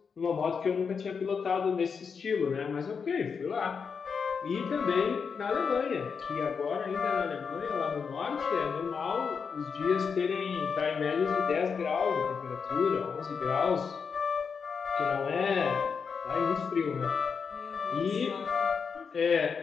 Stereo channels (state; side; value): quieter; right; 5.9 dB